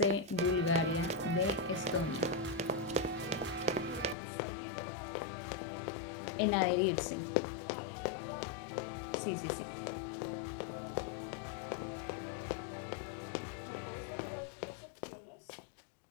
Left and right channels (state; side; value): drops out; right; at 4.2 s